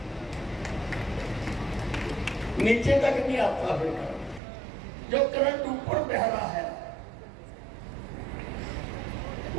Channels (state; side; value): drops out; left; at 4.4 s